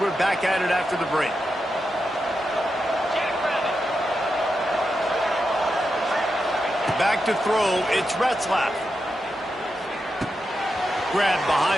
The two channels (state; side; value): normal; both; correlation 0.87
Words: back at it after the break. Back to throw, it's Retzlaff. Grabbed